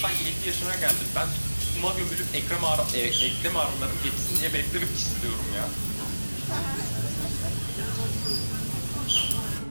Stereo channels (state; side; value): inverted; both; correlation -1.00